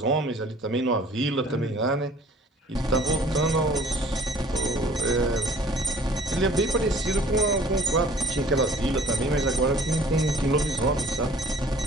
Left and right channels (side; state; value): both; normal; correlation 0.52